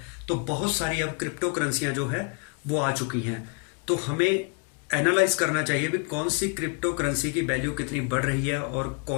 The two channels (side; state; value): right; quieter; 32.3 dB